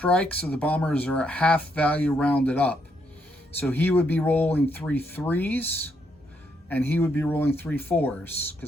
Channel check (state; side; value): normal; both; correlation 0.76